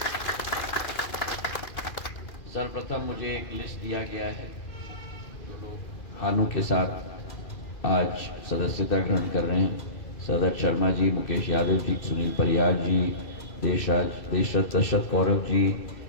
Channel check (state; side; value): late; right; 2.4 ms